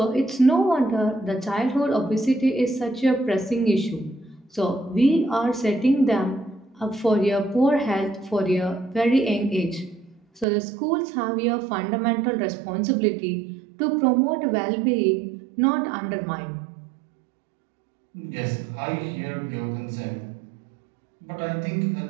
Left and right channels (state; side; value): drops out; left; at 10.5 s